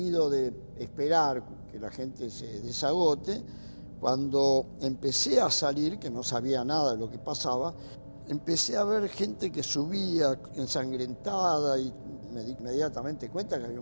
de esperar que la gente se desagote, cuando empecé a salir, que no sabía nada de lo que pasaba, empecé a ver gente que subía ensangrentada y me di inmediatamente cuenta que había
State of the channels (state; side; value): inverted; both; correlation -1.00